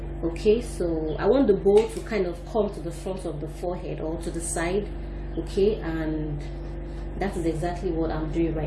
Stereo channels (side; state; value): both; identical; correlation 1.00